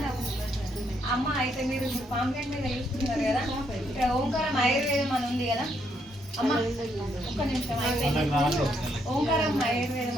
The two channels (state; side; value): normal; both; correlation 0.75